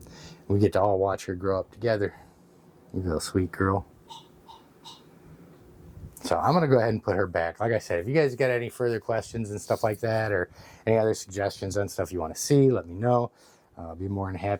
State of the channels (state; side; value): identical; both; correlation 1.00